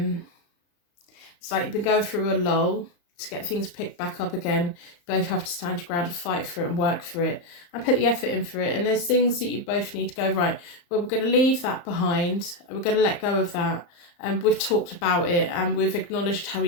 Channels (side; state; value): right; late; 34 ms